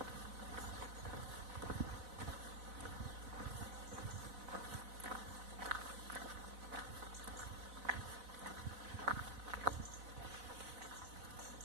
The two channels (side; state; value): left; late; 4.0 ms